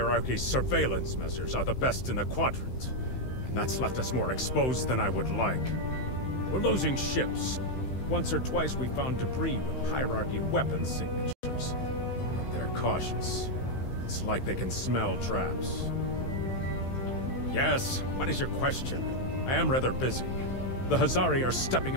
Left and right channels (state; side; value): late; right; 16 ms